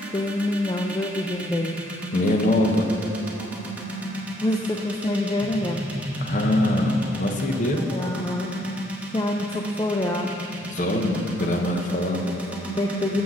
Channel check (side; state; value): both; normal; correlation 0.69